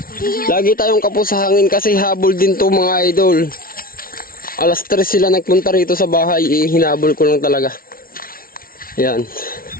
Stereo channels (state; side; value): late; right; 0.43 ms